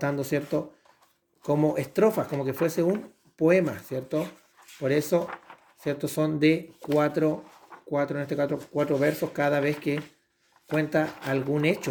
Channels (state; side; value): identical; both; correlation 1.00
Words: ¿cierto? Como estrofas, como que fuese un poema, ¿cierto? Por eso, ¿cierto? Son de en este caso, 4 versos cada vez que cuenta algún